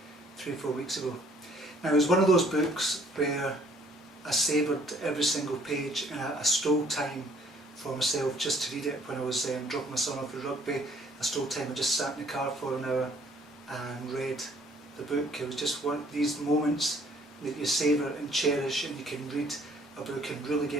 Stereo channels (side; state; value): both; normal; correlation 0.61